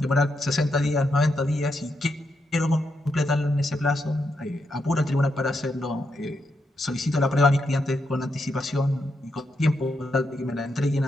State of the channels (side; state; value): both; normal; correlation 0.82